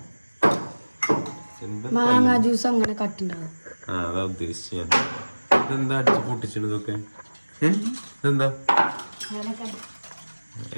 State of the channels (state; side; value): inverted; both; correlation -1.00